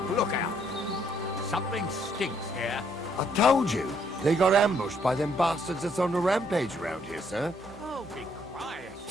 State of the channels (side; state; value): right; noise; hum, 23 dB below the sound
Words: lookout. Something stinks here. I told you, they got ambushed by them bastards that's on the rampage around here, sir. Oh, be quiet.